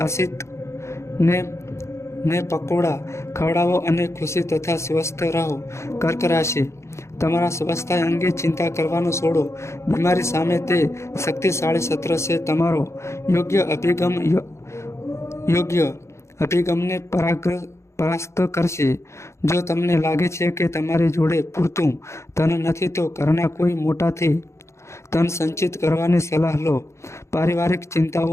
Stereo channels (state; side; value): late; right; 0.14 ms